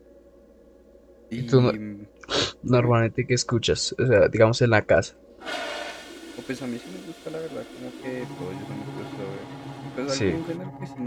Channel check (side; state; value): both; identical; correlation 1.00